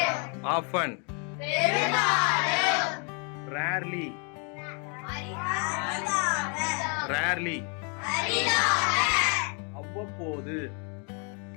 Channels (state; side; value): quieter; right; 37.6 dB